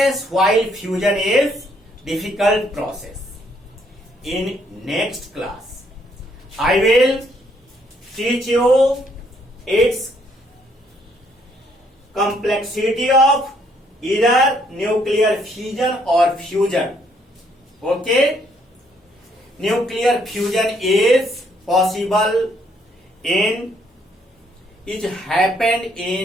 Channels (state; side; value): normal; both; correlation 0.69